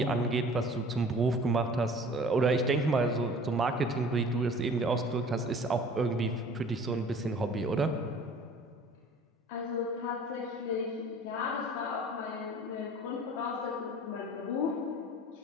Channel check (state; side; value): normal; both; correlation 0.47